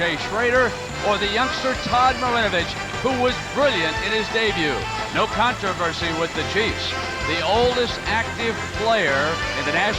Schroeder or the youngster Todd Marinovich, who was brilliant in his debut. No controversy with the Chiefs. The oldest active player in the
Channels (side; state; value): both; identical; correlation 1.00